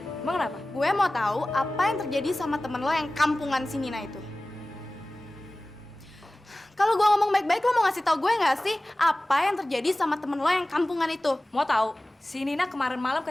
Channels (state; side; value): normal; both; correlation 0.97